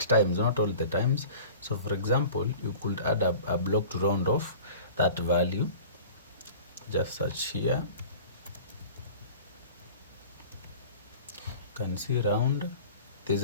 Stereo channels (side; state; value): both; inverted; correlation -0.42